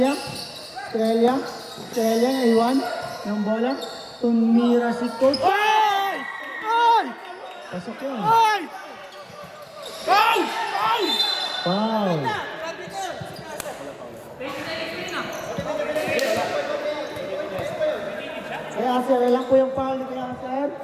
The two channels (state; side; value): identical; both; correlation 1.00